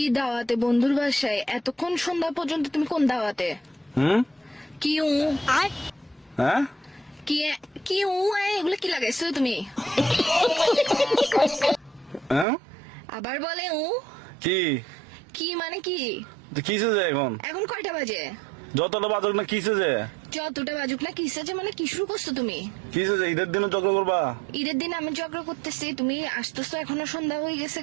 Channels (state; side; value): drops out; left; at 12.5 s